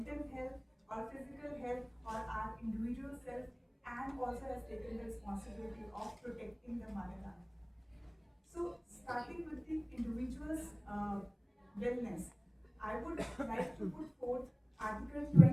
health, our physical health, or our individual self, and also has taken the responsibility of protecting the motherland. So, starting with the individual's wellness, I would like to put forth Article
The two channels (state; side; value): identical; both; correlation 1.00